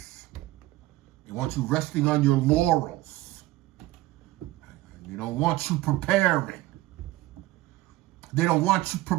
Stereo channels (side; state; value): left; quieter; 17.3 dB